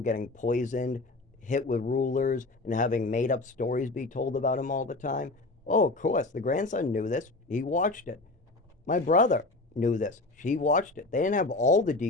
getting poisoned, hit with rulers, and having made up stories be told about him all the time? Oh, of course. The grandson knew this. He watched it. My brother knew this. He watched it. They didn't have all the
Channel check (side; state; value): right; quieter; 3.1 dB